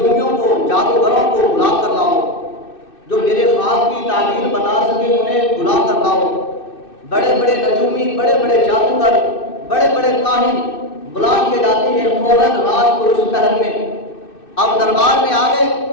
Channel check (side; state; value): right; late; 2.6 ms